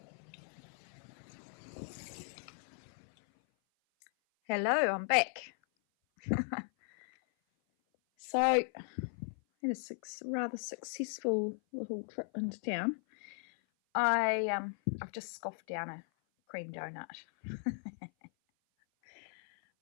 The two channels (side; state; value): right; silent; 53 dB below the other